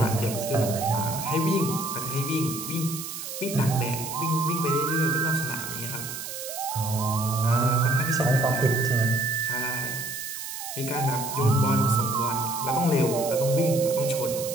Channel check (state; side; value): noise; right; hiss, 8 dB below the sound